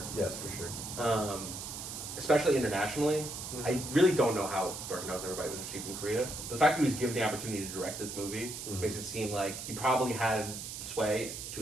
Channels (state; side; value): noise; right; hiss, 8 dB below the sound